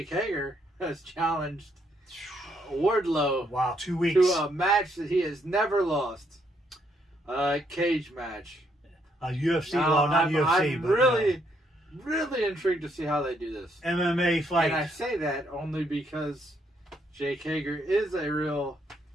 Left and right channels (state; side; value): normal; both; correlation 0.73